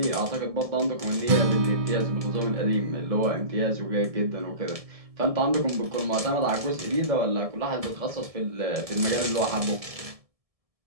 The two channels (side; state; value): left; late; 1.7 ms